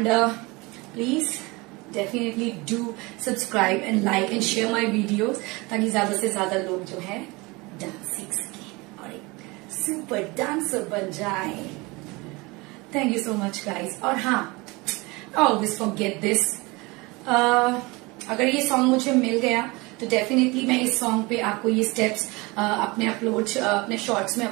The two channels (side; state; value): left; quieter; 24.6 dB